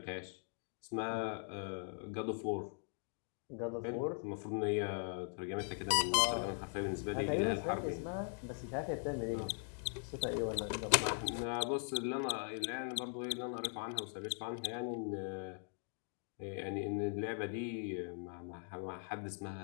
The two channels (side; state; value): right; silent; 51 dB below the other